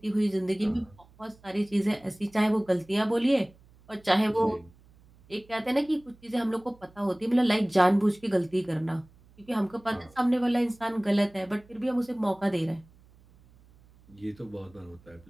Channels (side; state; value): right; noise; hum, 27 dB below the sound